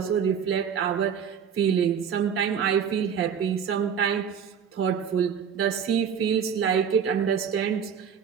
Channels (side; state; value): left; quieter; 7.6 dB